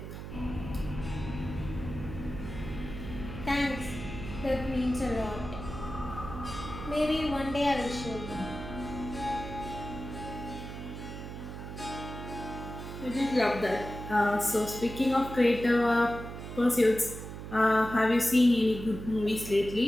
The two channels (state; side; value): noise; right; hum, 9 dB below the sound